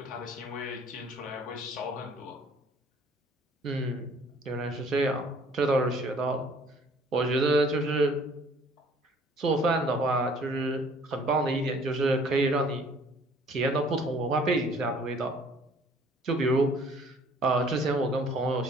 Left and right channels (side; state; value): both; normal; correlation 0.56